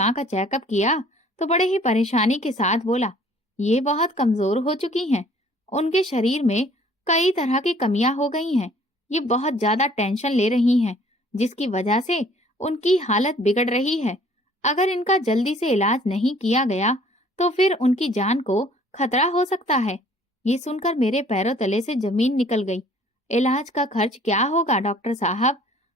का चेकअप किया तो बड़े ही परेशानी के साथ बोला, ये बहुत कमजोर हो चुकी हैं। उनके शरीर में कई तरह की कमियां हो गई हैं। ये बहुत ज्यादा टेंशन ले रही हैं, जिसकी वजह से उनकी हालत बिगड़ रही है। अगर इनका जल्दी से इलाज नहीं किया गया तो फिर उनकी जान को खतरा हो सकता है। ये सुनकर मेरे पैरों तले से जमीन निकल गई। इलाज का खर्च क्या होगा डॉक्टर साहब?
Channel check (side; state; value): both; normal; correlation 0.56